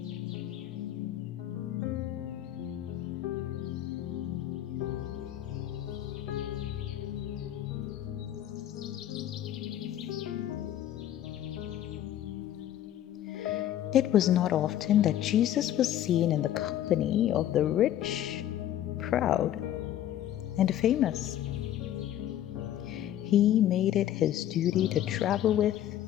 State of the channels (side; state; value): right; quieter; 11.9 dB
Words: It was not often that Jesus was seen in the company of the rich, proud, and famous. He made it his duty to travel with